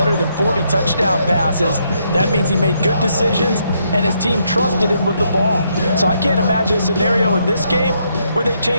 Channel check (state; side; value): inverted; both; correlation -0.75